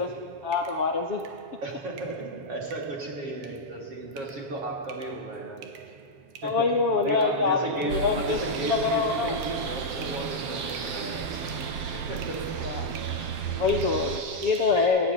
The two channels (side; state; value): left; late; 7.6 ms